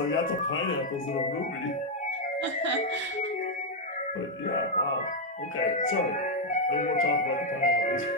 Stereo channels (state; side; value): normal; both; correlation 0.00